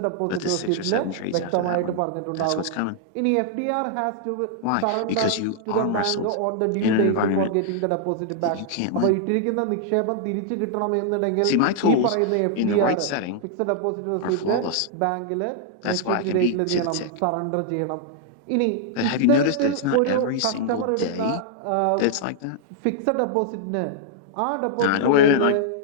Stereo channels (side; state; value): both; different; correlation -0.01